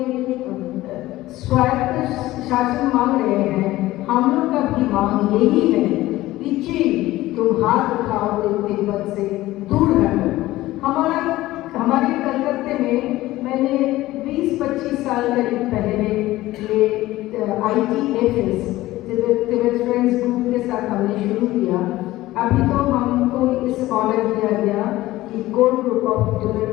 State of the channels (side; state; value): right; quieter; 16.9 dB